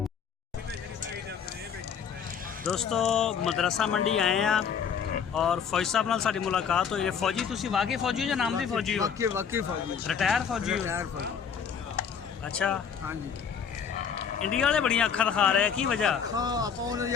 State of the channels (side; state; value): right; quieter; 7.1 dB